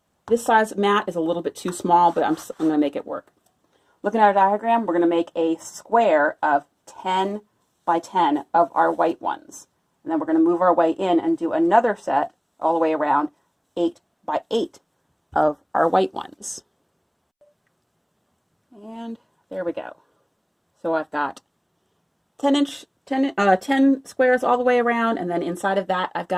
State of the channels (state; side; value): identical; both; correlation 1.00